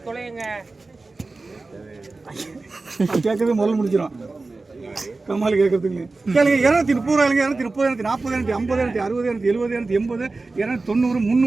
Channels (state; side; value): quieter; left; 3.5 dB